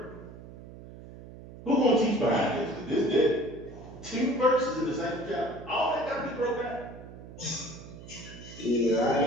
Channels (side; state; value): right; noise; hum, 15 dB below the sound